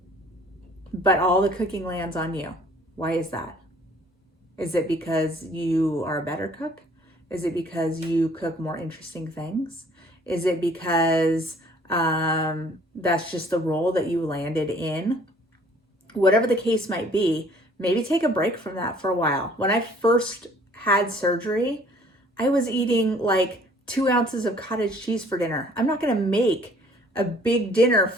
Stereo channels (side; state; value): both; normal; correlation 0.56